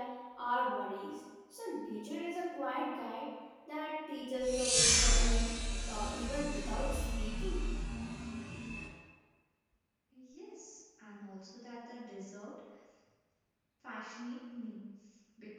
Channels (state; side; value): identical; both; correlation 1.00